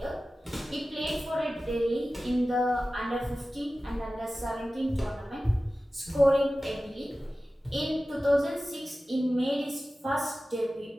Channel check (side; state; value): both; normal; correlation 0.96